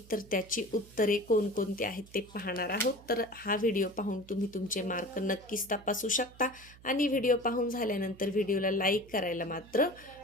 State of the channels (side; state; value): right; noise; hum, 22 dB below the sound